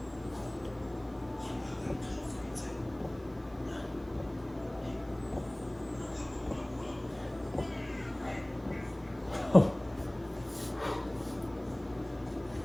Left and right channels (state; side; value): noise; right; hiss, 28 dB below the sound